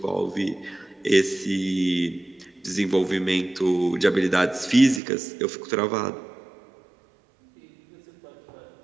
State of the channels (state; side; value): drops out; left; at 5.0 s